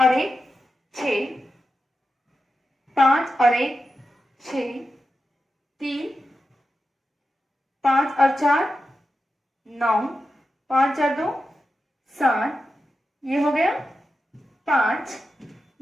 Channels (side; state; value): both; normal; correlation 0.90